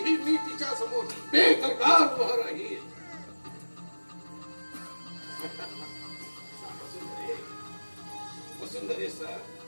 मी तिच्या समोर बेदरकार उभा राहील. वसुंधरे सर,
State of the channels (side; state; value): both; inverted; correlation -1.00